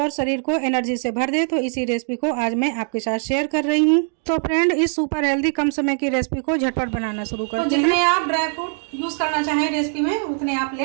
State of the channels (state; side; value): silent; left; 59 dB below the other